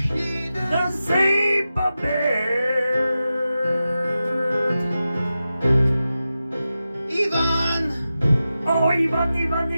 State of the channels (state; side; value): inverted; both; correlation -0.92